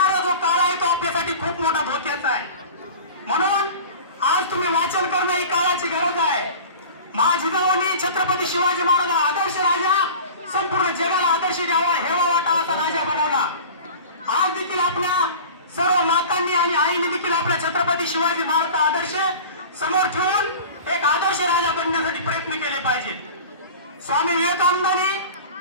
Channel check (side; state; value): both; inverted; correlation -0.37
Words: जो काळ आहे तो आपल्यासाठी खूप मोठा धोक्याचा आहे। म्हणून आज तुम्ही वाचन करणं ही काळाची गरज आहे। मा जिजाऊंनी छत्रपती शिवाजी महाराज आदर्श राजा, संपूर्ण जगाला आदर्श द्यावा, हेवा वाटा असा राजा बनवला। आज देखील आपल्या सर्व मातांनी आणि आईने देखील आपल्या छत्रपती शिवाजी महाराजचा आदर्श समोर ठेवून एक आदर्श राजा बनण्यासाठी प्रयत्न केले पाहिजे। स्वामी विवेकानंदांनी